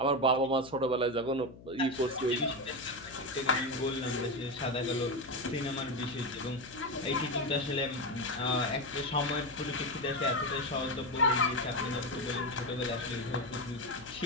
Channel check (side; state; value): left; noise; hum, 18 dB below the sound